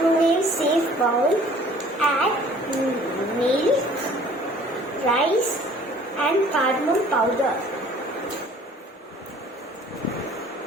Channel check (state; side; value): normal; both; correlation 0.52